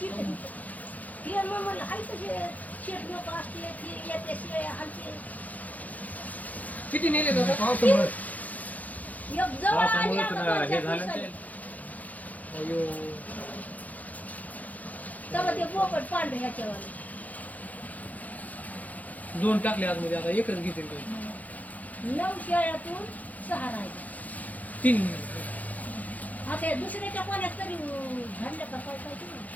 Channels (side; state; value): right; late; 0.077 ms